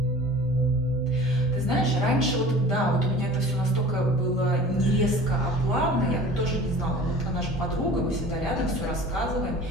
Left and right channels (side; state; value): both; normal; correlation 0.42